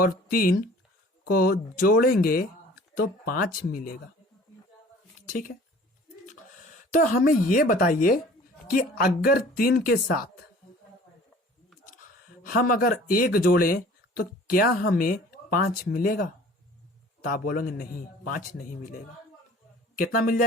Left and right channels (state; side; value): normal; both; correlation 0.48